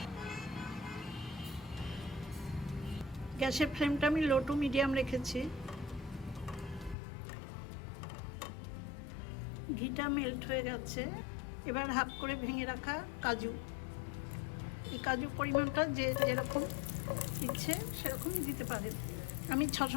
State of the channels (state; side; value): drops out; right; at 7.0 s